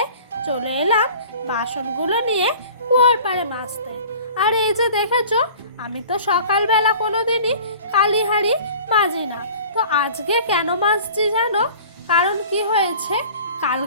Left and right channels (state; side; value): inverted; both; correlation -0.44